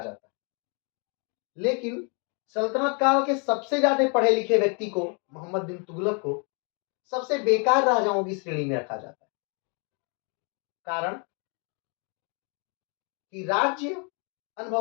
जाता है। लेकिन सल्तनत काल के सबसे ज्यादा पढ़े लिखे व्यक्ति को, मोहम्मद बिन तुगलक को, सबसे बेकार राजाओं की श्रेणी में रखा जाता है। कारण कि राज्य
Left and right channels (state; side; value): quieter; right; 36.9 dB